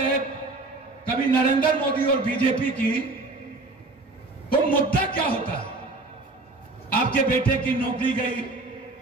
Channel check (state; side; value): quieter; left; 3.2 dB